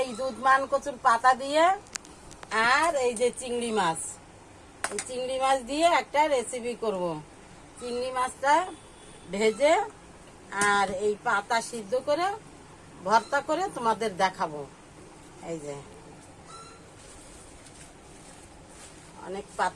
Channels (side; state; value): both; identical; correlation 1.00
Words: দুধমান কচুর পাতা দিয়ে আর এই যে চিংড়ি মাছ, এই চিংড়ি মাছ দিয়ে একটা রেসিপি করব। চিংড়ি মাছটা ভেজে আর এই পাতা সিদ্ধ করে ভর্তা করে তোমাদের দেখাবো। এই যে অনেক